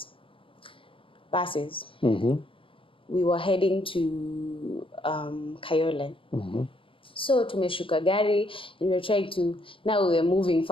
buses. We were heading to Kayole. So tumeshuka gari, and we were trying to, now we were moving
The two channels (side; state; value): right; late; 0.25 ms